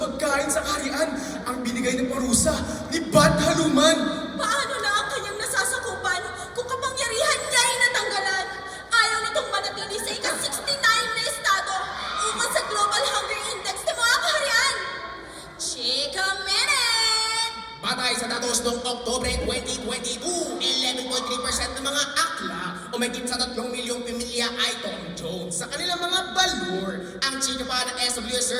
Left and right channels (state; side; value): identical; both; correlation 1.00